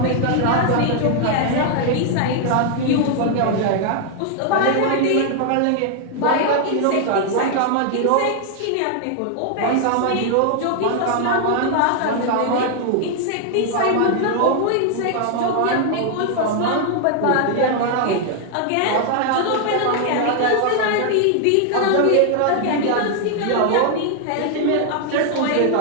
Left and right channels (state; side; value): different; both; correlation 0.00